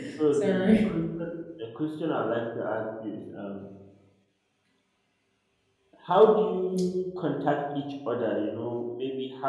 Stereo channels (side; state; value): both; identical; correlation 1.00